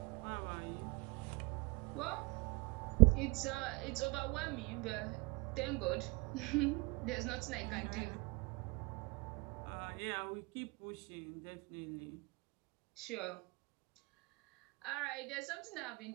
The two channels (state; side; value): quieter; left; 26.7 dB